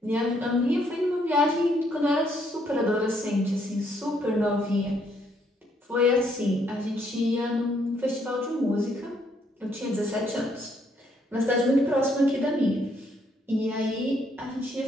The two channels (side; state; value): both; normal; correlation 0.70